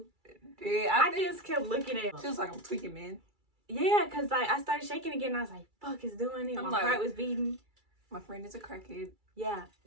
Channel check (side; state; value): left; late; 2.3 ms